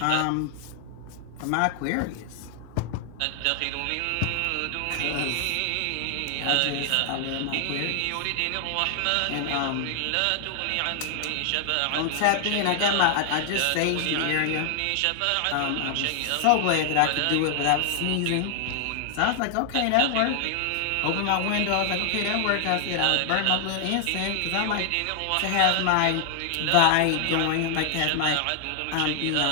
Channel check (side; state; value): both; different; correlation 0.00